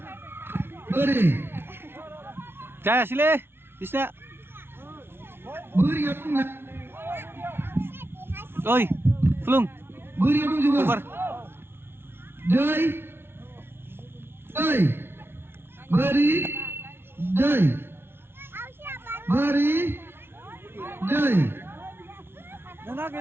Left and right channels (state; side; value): late; left; 0.11 ms